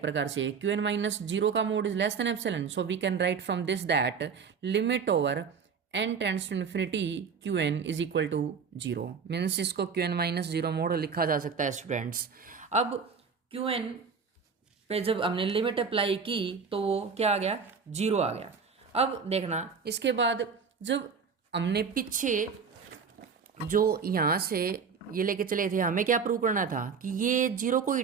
प्रकार से क्यूएन माइनस 0 का mod is less than epsilon, so we can write from this that limit over n tends to infinity qn is equal to 0, means इसको qn माइनस 0 मोड लिखा जा सकता है स्टूडेंट्स। अब qn पे जब हमने लिमिट अप्लाई की तो वो क्या आ गया, 0 आ गया। अब देखना इसके बाद जब हमने पीछे जो यहाँ से ये लेके चले थे, हमें क्या प्रूव करना था कि ये 0 को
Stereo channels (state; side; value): quieter; left; 5.8 dB